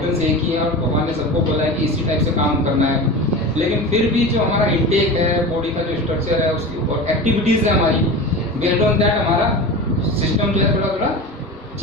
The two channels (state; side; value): normal; both; correlation 0.30